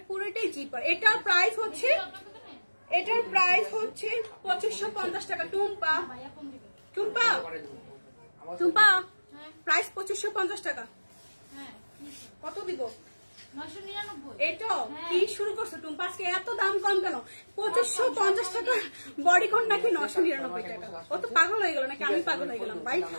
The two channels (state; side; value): inverted; both; correlation -1.00